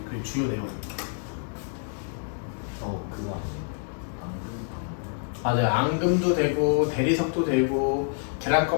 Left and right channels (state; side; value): silent; right; digital silence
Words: 그 주요 내용입니다. 그거 아니에요? 맞아요. 앙금도 되고 대리석도 되고 계란